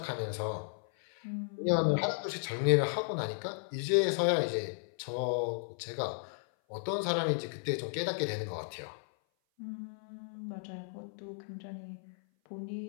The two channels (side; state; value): right; silent; 55 dB below the other